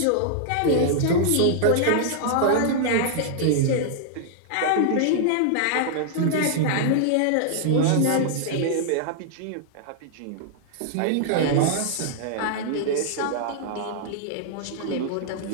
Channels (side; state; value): both; different; correlation -0.01